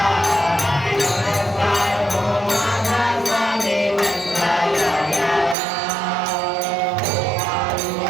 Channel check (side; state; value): left; drops out; at 5.6 s